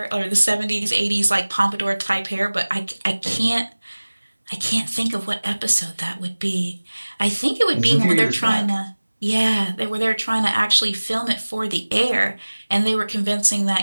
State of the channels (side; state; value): both; inverted; correlation -1.00